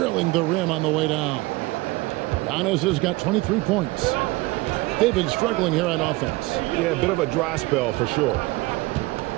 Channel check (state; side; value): quieter; left; 21.6 dB